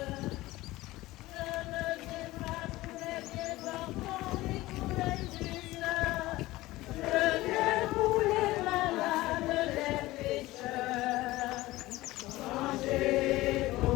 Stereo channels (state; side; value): quieter; right; 18.3 dB